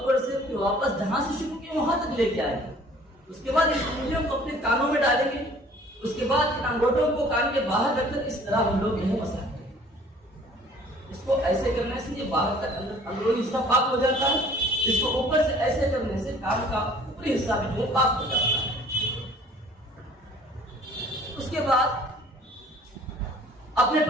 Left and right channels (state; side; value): normal; both; correlation 0.52